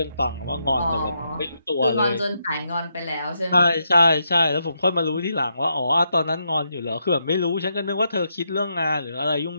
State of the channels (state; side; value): inverted; both; correlation -0.81